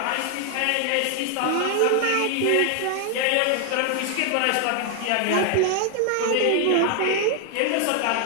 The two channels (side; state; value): both; different; correlation 0.00